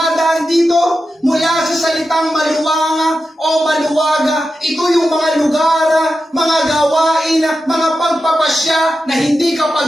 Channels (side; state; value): both; normal; correlation 0.91